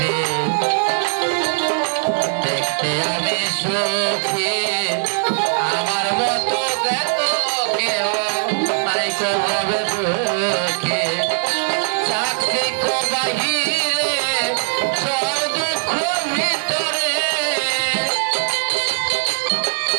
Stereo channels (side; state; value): left; silent; digital silence